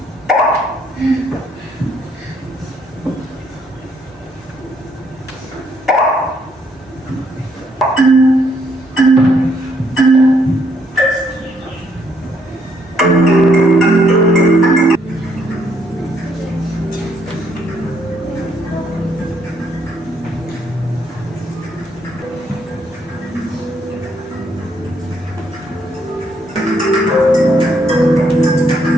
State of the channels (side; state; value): both; normal; correlation 0.71